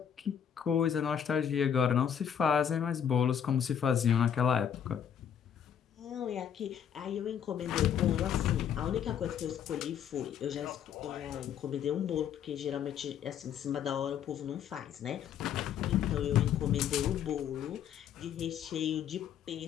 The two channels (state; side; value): quieter; right; 8.7 dB